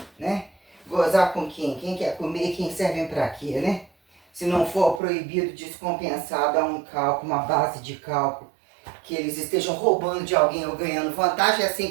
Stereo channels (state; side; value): drops out; left; at 5.0 s